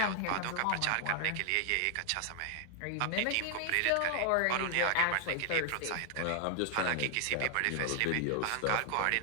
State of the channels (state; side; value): different; both; correlation 0.00